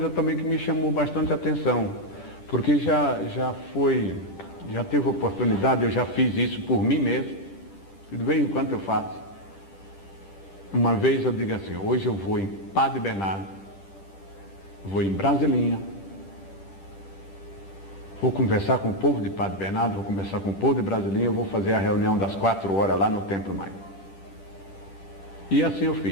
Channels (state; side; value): late; right; 10 ms